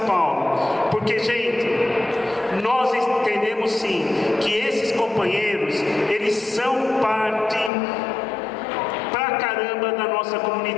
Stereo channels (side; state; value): right; drops out; at 7.7 s